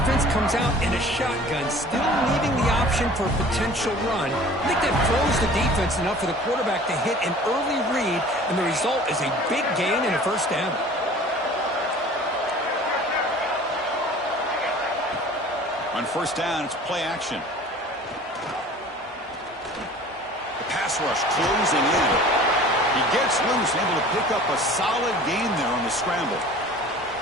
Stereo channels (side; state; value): both; normal; correlation 0.45